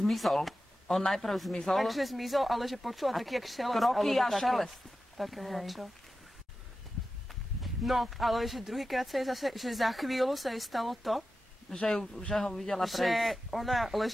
zmizol. Takže zmizol, ale že počula taký, jak šelest. Kroky a šelest. Také mladšie. No, ale že druhýkrát sa jej zase, že za chvíľu sa jej stalo to, že ho videla prejsť. Že ona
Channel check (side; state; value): both; normal; correlation 0.93